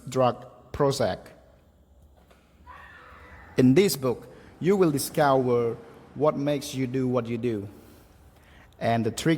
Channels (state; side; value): identical; both; correlation 1.00